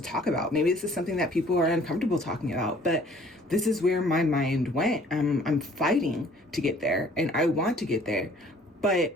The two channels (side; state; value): both; normal; correlation 0.55